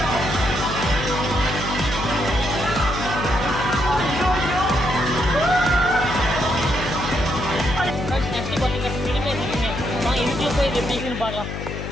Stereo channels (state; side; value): noise; left; hum, 6 dB below the sound